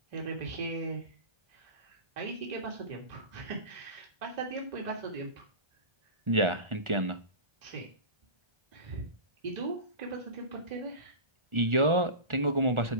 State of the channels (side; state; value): left; late; 1.4 ms